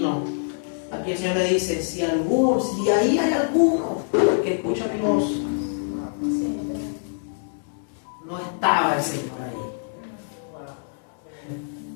Aquí el Señor le dice, si ahí hay alguno que escucha mi voz, no estaba el Señor ahí.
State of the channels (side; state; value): right; silent; digital silence